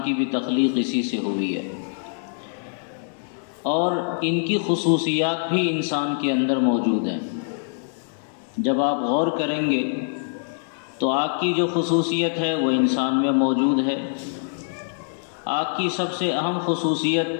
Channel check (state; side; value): silent; right; 63 dB below the other